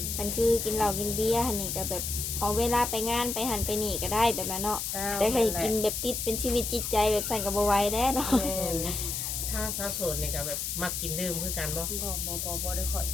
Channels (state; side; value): noise; left; hiss, 3 dB below the sound